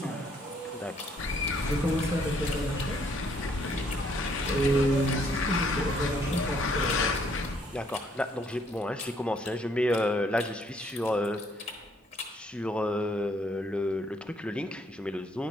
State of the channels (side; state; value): both; normal; correlation 0.67